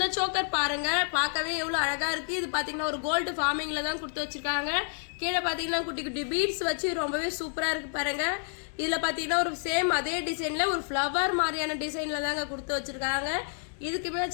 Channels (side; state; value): right; silent; digital silence